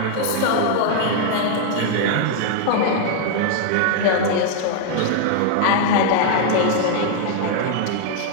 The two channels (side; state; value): both; different; correlation 0.00